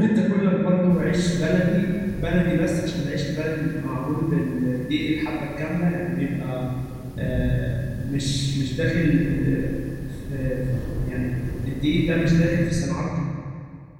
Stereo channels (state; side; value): identical; both; correlation 1.00